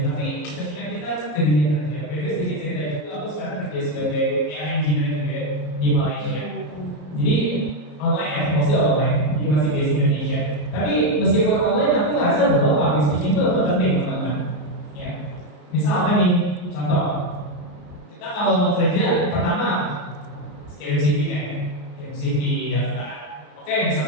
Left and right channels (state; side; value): late; right; 34 ms